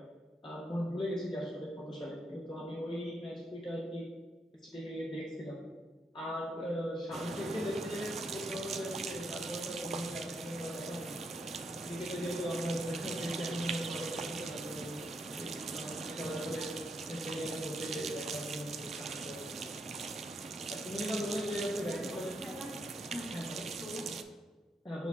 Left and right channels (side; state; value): both; normal; correlation 0.78